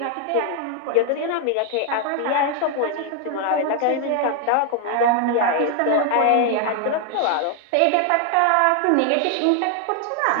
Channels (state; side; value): different; both; correlation 0.00